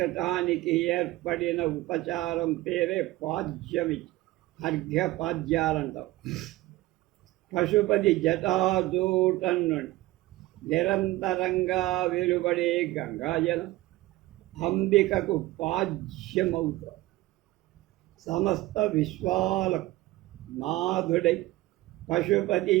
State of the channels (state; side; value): quieter; left; 18.0 dB